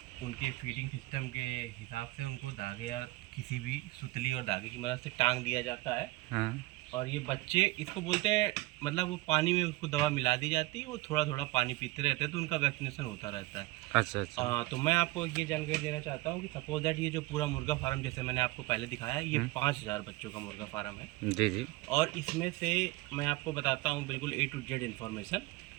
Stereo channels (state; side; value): quieter; left; 20.3 dB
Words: उनके फीडिंग सिस्टम के हिसाब से उनको धागे या किसी भी सुतली और धागे की मदद से टांग दिया जाता है। हाँ। और ये बच्चे इसको बोलते हैं, मतलब वो पानी में उसको दवा मिला दी जाती है, वो थोड़ा थोड़ा पानी पीते रहते हैं, तो उनका वैक्सीनेशन होता रहता है। अच्छा। तो मैं आपको ये जानकारी देना चाहता हूँ कि सपोज दैट ये जो पूरा मुर्गा फार्म जैसे मैंने आपको पहले दिखाया, ये 5000 बच्चों का मुर्गा फार्म है। जी। और इसमें से मैं आपको बताता हूँ बिल्कुल A to Z इन्फॉर्मेशन,